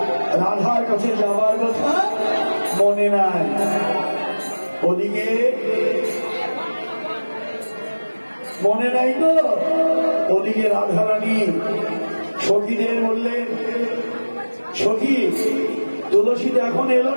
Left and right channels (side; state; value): both; inverted; correlation -1.00